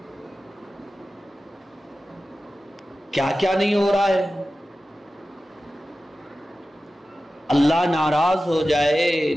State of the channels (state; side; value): normal; both; correlation 0.94